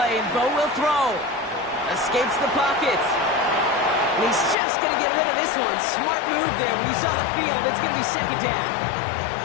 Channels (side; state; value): right; drops out; at 4.5 s